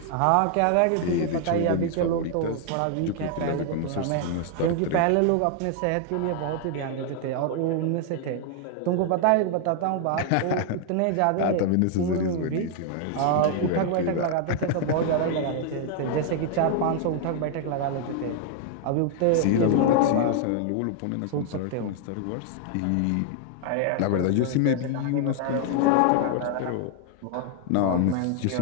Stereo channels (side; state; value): both; different; correlation 0.00